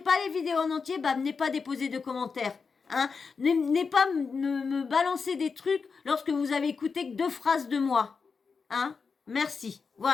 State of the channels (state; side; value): quieter; right; 5.2 dB